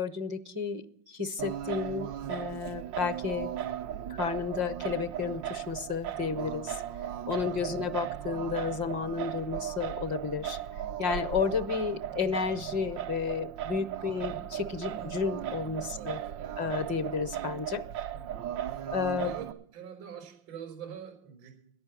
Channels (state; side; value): late; left; 5.6 ms